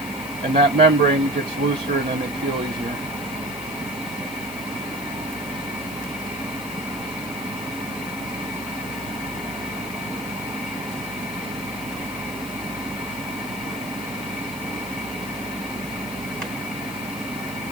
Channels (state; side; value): noise; left; hiss, 13 dB below the sound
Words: And that membrane gets looser and then they peel easier.